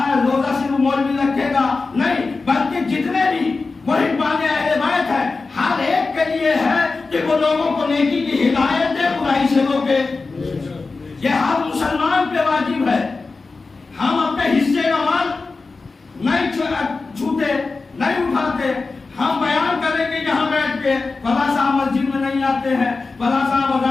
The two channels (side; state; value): right; quieter; 4.0 dB